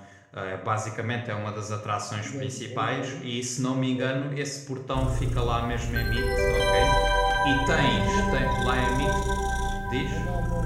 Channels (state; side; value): identical; both; correlation 1.00